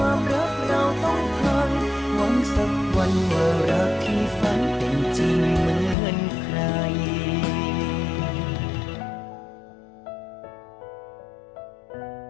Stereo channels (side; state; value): right; drops out; at 6.0 s